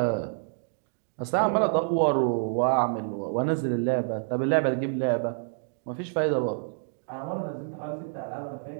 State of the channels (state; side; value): silent; left; digital silence